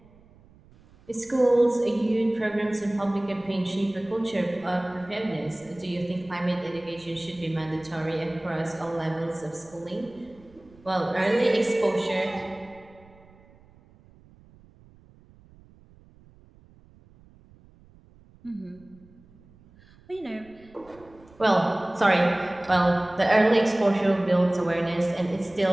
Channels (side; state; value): right; noise; rumble, 27 dB below the sound